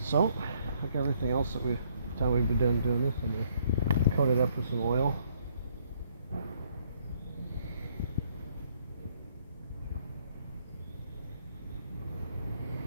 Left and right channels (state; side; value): inverted; both; correlation -0.68